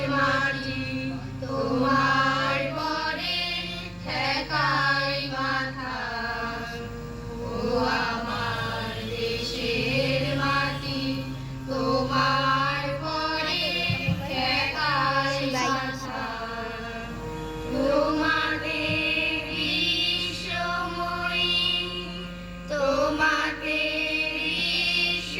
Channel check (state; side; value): identical; both; correlation 1.00